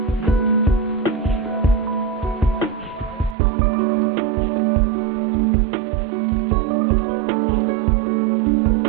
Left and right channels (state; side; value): drops out; left; at 3.4 s